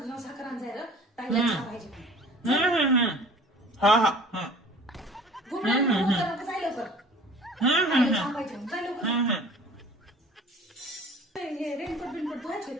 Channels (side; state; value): both; normal; correlation 0.46